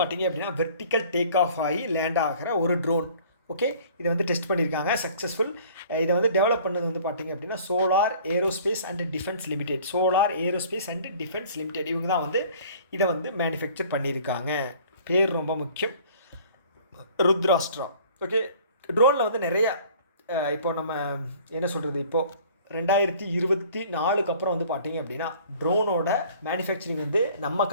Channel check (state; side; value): inverted; both; correlation -0.51